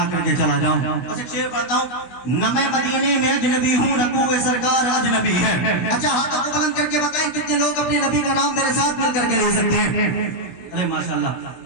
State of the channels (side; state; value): right; late; 16 ms